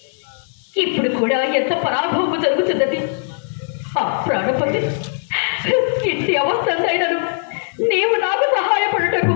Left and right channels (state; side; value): silent; right; digital silence